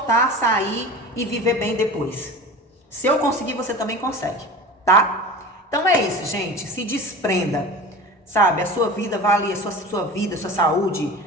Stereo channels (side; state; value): both; normal; correlation 0.34